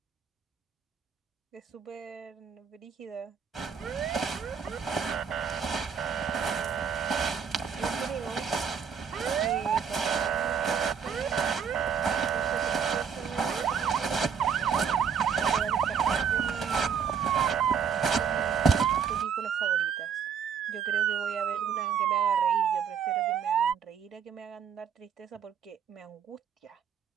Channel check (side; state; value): left; quieter; 7.1 dB